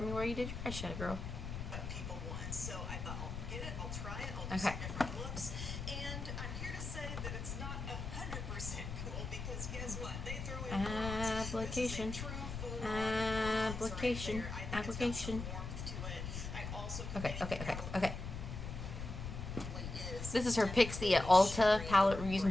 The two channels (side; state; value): left; noise; rumble, 6 dB below the sound